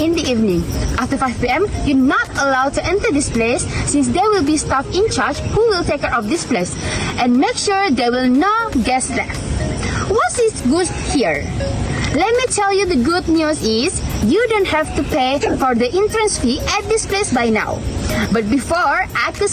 the evening. After 5 p.m., you're not allowed to enter this place, since there will be staff in charge who will take care of this place and make sure there will no guests left. What is good here? Let me tell you, the good news is you don't have to pay for the entrance fee at this place by now. But before, I could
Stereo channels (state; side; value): identical; both; correlation 1.00